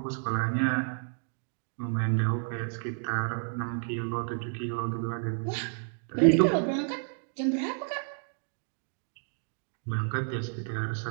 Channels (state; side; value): silent; left; 57 dB below the other